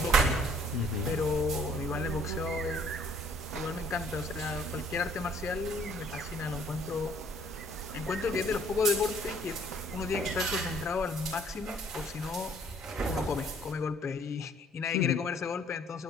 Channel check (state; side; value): normal; both; correlation 0.61